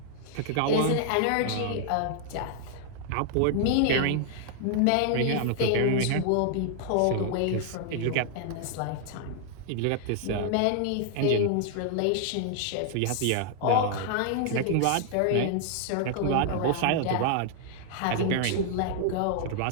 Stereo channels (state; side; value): different; both; correlation 0.00